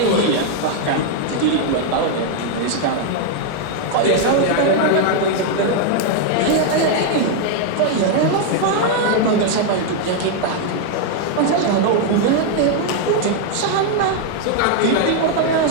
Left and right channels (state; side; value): different; both; correlation 0.00